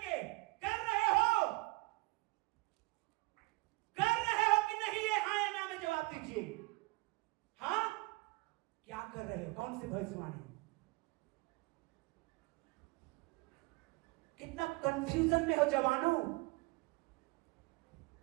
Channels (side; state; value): left; quieter; 24.6 dB